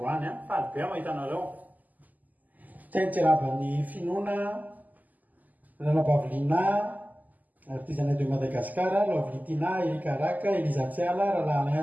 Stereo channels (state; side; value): late; left; 0.081 ms